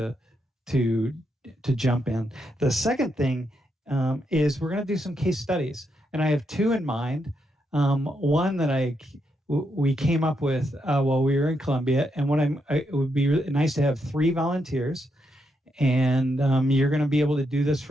jump in. The second thing is we're going to do some case studies, and I have two in mind. One that we came up with while we were in Columbia, and it would be really nice to have 3 volunteers, and you're going to be able to do this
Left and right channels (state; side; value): normal; both; correlation 0.81